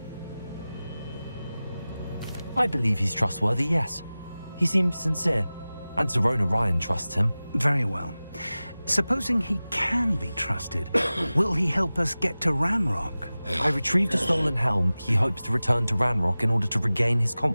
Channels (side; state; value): both; inverted; correlation -0.97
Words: I believe he's trustworthy, yes. He seemed sincere, and Serona Ryan trusts him. Very well. Supposing he can be trusted, will he help us get to Ranrock? I retrieved a stolen helm. He hopes to return to Ranrock in order to regain his